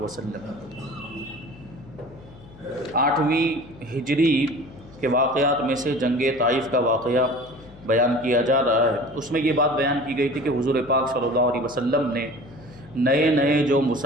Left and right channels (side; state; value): left; noise; hum, 21 dB below the sound